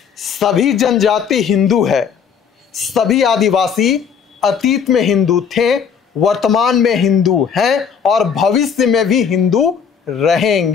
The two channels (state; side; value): quieter; right; 7.0 dB